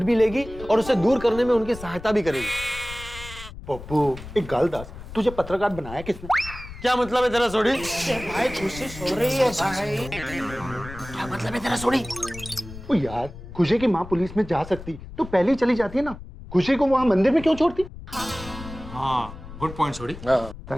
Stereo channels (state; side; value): noise; left; rumble, 14 dB below the sound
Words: भी लेगी और उसे दूर करने में उनकी सहायता भी करेगी। पप्पू एक गाल दास, तुझे पत्रकार बनाया किसने? क्या मतलब है तेरा सोडी? भाई खुशी सो रही है भाई। क्या मतलब है तेरा सोडी? ओ यार, खुशी की माँ पुलिस में जा सकती तो पहले ही चली जाती है ना, खुशी को वहाँ मंदिर में क्यों छोड़ती? हाँ, good point Sodhi.